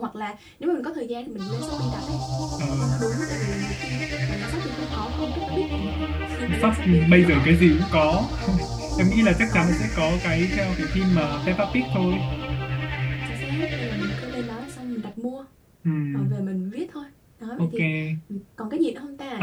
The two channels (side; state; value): both; identical; correlation 1.00